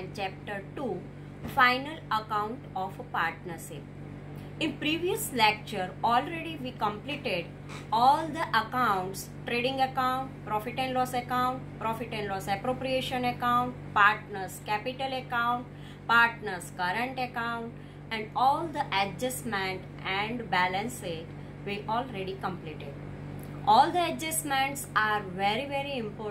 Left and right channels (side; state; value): both; identical; correlation 1.00